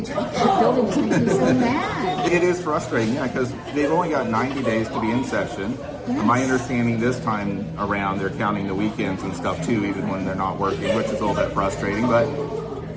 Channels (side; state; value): both; identical; correlation 1.00